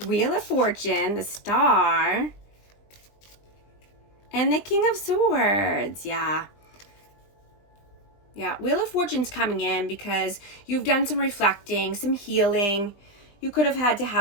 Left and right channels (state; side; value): late; right; 20 ms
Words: Wheel of Fortune, the Star, and the King of Swords. Yeah. Yeah, Wheel of Fortune's coming in because you've done some reflecting, some healing. You could have had to